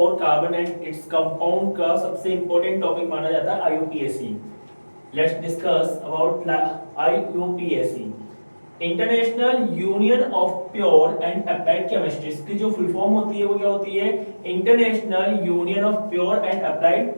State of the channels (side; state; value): both; inverted; correlation -1.00